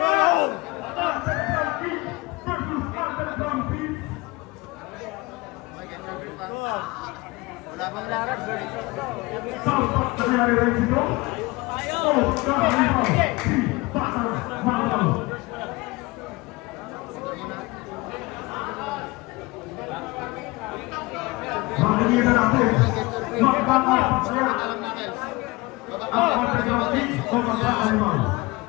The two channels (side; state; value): right; quieter; 23.1 dB